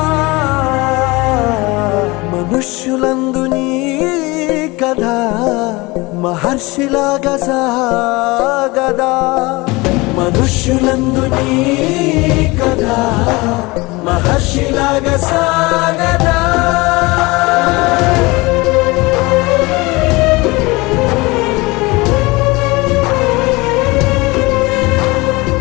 మనుష్యులందు నీ కథ మహర్షిలాగా సాగదా మనుష్యులందు నీ కథ మహర్షిలాగా సాగదా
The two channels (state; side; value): quieter; right; 23.4 dB